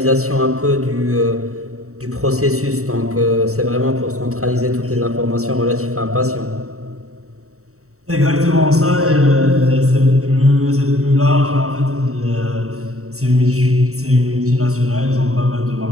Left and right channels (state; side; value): late; left; 0.64 ms